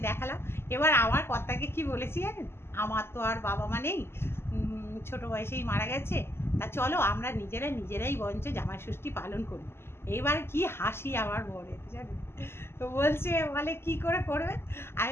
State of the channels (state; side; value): late; right; 0.12 ms